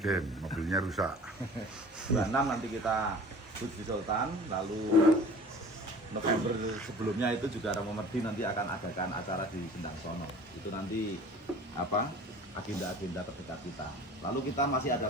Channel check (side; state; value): both; normal; correlation 0.44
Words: mobilnya rusak. 26 nanti kita di Sultan, lalu November sebelumnya itu juga Romo Merdi nanti akan adakan acara di Sendang Sono. Itu nanti apa agenda-agenda terdekat kita. Lalu kita masih ada